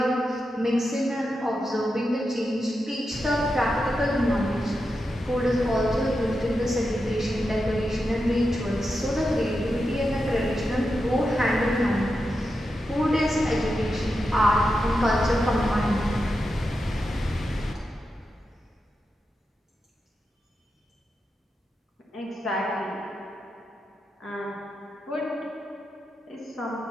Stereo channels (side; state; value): both; normal; correlation 0.88